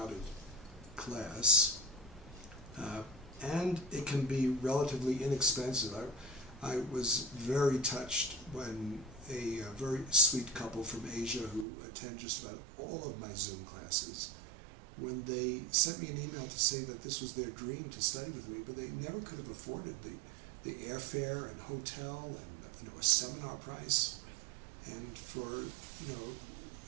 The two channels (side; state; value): left; drops out; at 11.7 s